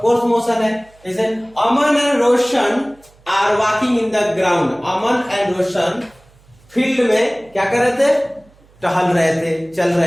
कोर्स मोशन है। जैसे Aman and Roshan are walking in the ground, Aman and Roshan field में क्या कर रहे थे? टहल रहे थे, चल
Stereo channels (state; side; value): noise; right; hum, 29 dB below the sound